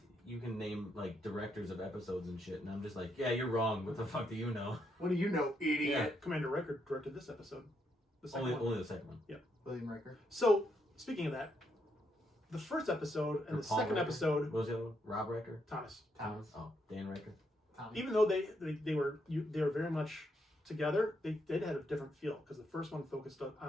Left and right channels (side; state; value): both; normal; correlation 0.78